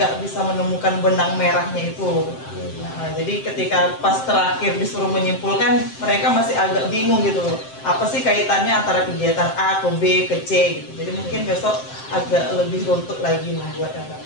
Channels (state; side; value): late; right; 7.6 ms